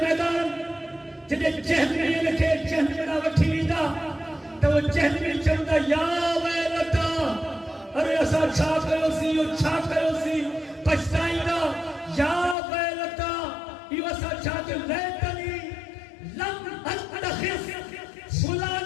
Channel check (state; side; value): drops out; right; at 12.6 s